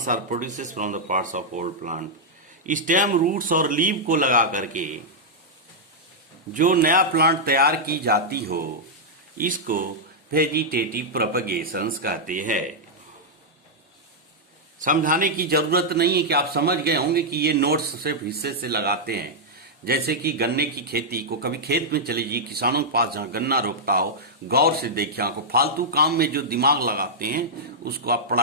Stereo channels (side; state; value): both; normal; correlation -0.07